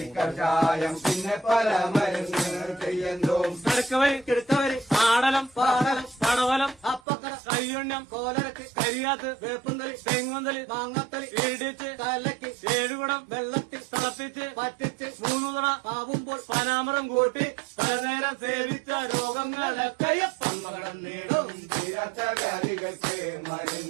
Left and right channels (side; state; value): left; drops out; at 7.0 s